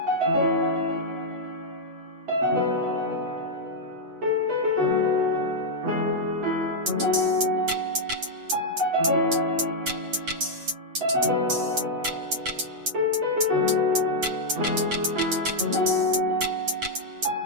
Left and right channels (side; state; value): left; late; 8.0 ms